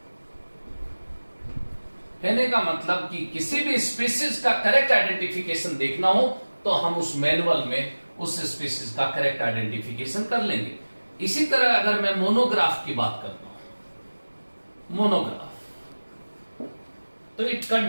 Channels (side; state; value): both; inverted; correlation -1.00